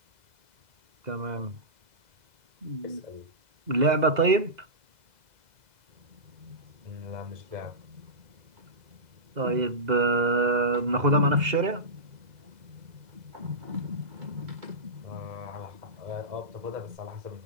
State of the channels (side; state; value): left; late; 2.0 ms